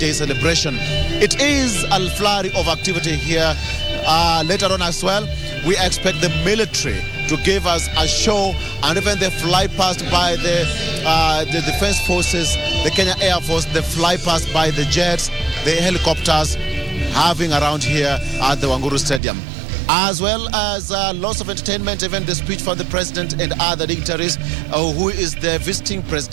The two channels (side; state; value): left; drops out; at 19.2 s